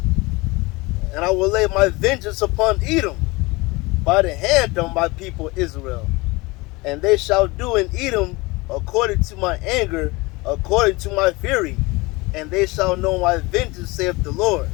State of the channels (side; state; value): right; quieter; 23.7 dB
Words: And I will lay my vengeance upon Edom by the hand of my people Israel. And they shall do in Edom according to my anger, according to my fury. And they shall know my vengeance, saith the Lord.